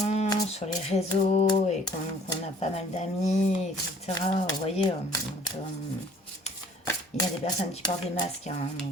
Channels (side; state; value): both; normal; correlation 0.55